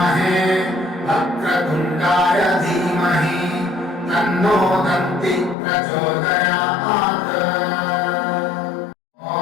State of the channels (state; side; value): drops out; right; at 5.6 s